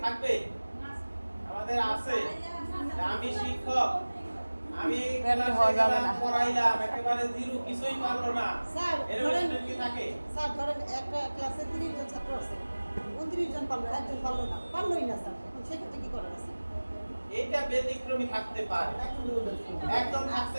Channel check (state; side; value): inverted; both; correlation -1.00